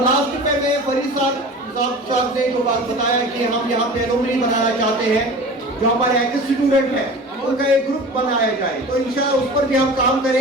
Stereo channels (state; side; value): normal; both; correlation 0.37